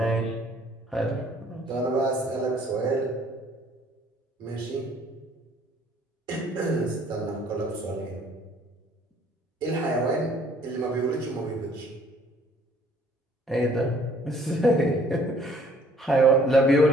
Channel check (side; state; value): both; normal; correlation 0.59